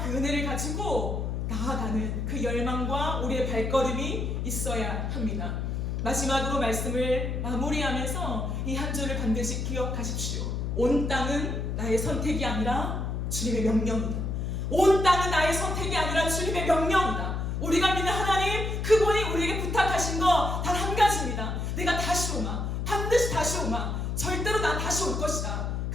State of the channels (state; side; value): noise; left; hum, 2 dB below the sound